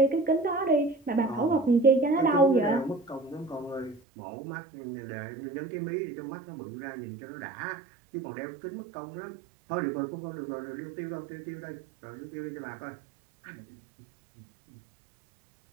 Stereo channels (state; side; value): drops out; left; at 4.0 s